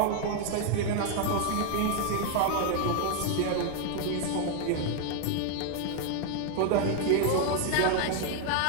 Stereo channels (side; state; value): both; different; correlation 0.00